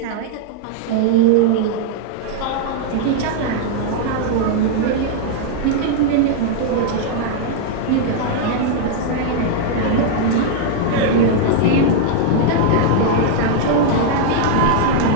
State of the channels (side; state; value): both; different; correlation -0.01